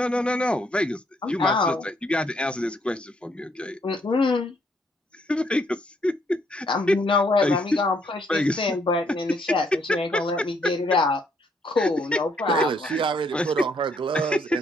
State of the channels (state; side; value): normal; both; correlation 0.70